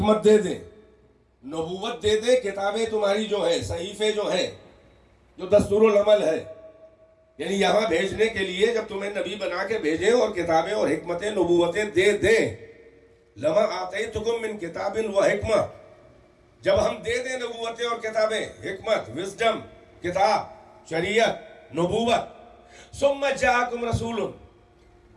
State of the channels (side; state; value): both; identical; correlation 1.00